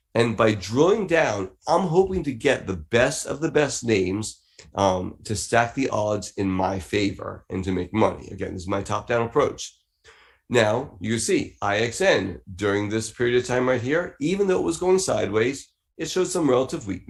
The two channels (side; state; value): both; identical; correlation 1.00